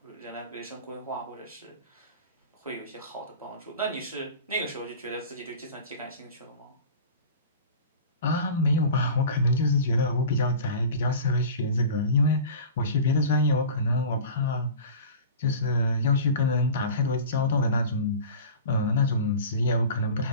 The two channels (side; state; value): both; inverted; correlation -0.36